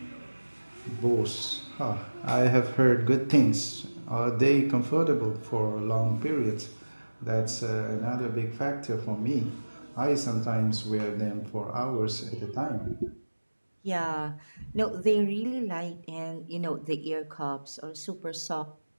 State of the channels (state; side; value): inverted; both; correlation -1.00